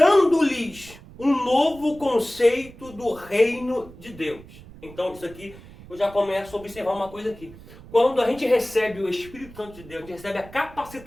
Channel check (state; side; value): noise; right; rumble, 19 dB below the sound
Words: um novo conceito do reino de Deus. Então, isso aqui, eu já começo a observar uma coisa aqui. Quando a gente recebe o Espírito Santo de Deus, a gente recebe a